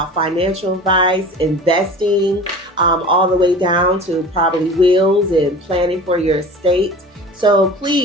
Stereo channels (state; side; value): normal; both; correlation 0.38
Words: financial advice, investing, all the way down to probably wills and planning for your estate. So